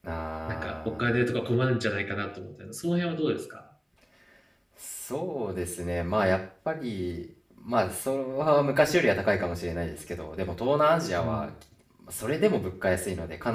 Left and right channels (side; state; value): both; identical; correlation 1.00